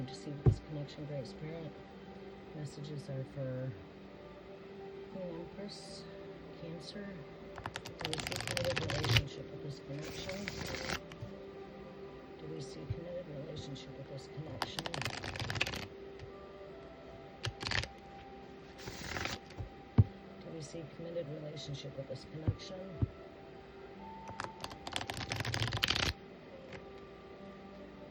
to see with this connection, Great Spirit. Messages are for Queen Empress, Cancer. Do we see committed relationship with this connection? Do we see committed relationship with this connection? Do we see committed relationship with this connection?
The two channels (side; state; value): both; identical; correlation 1.00